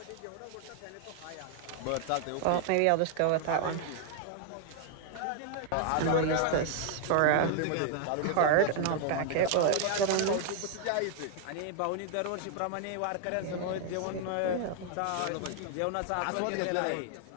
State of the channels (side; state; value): both; different; correlation 0.00